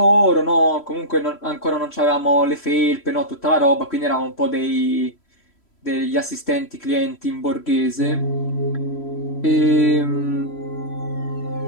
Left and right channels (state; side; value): late; right; 3.0 ms